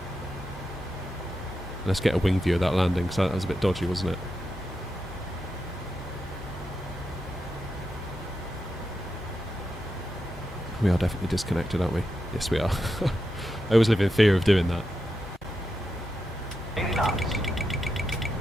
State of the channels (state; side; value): normal; both; correlation 0.87